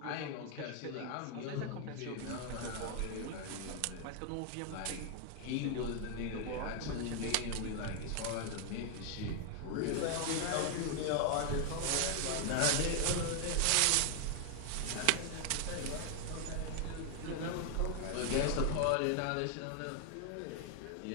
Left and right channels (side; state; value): both; different; correlation 0.00